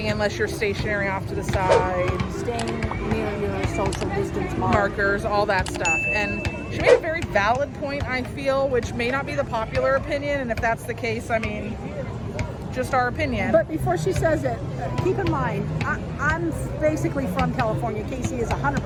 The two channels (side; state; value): both; identical; correlation 1.00